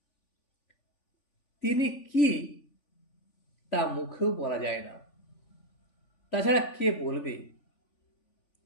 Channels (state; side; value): late; right; 3.5 ms